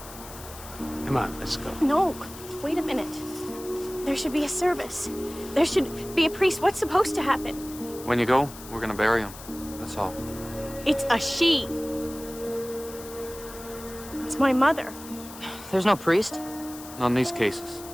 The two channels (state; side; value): noise; left; hiss, 15 dB below the sound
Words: Come on, let's go. No, wait a minute. There should be a service. There should be a priest. What's supposed to happen? When you go, we're gonna bury him. That's all. It's a she. It's my mother. There's no priest? Not in these cases.